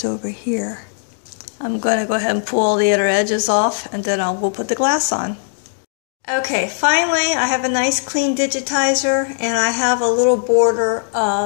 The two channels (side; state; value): right; silent; digital silence